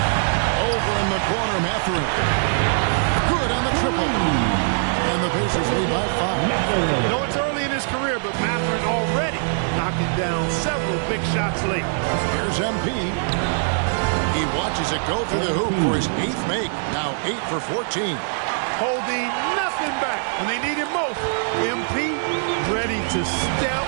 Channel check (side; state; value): left; silent; digital silence